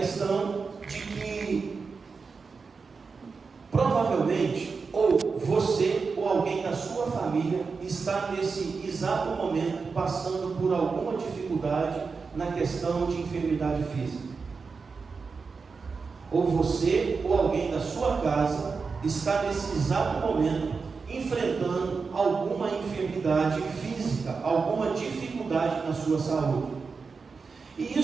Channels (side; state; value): left; quieter; 4.9 dB